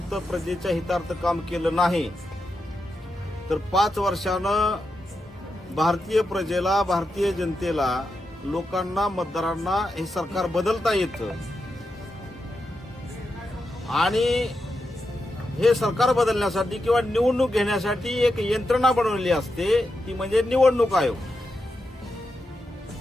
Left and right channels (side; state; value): both; normal; correlation 0.87